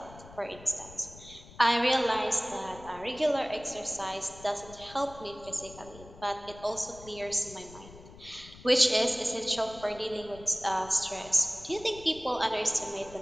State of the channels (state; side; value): noise; left; rumble, 18 dB below the sound